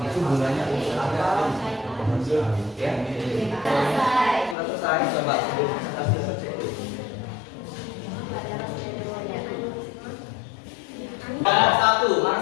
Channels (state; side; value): drops out; right; at 4.5 s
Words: itu gunanya untuk apa? Ya, sudah selesai. Coba sebelum presentasi selesai dulu. Satu, mana